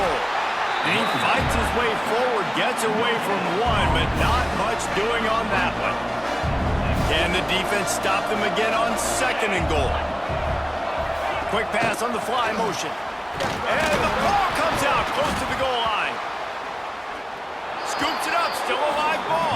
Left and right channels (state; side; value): identical; both; correlation 1.00